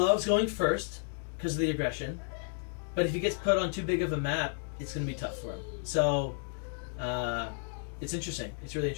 going first because of the aggression, but if he gets put on too big of a map, it's going to be tough for him. So, it's interesting. It's really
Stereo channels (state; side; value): silent; right; 56 dB below the other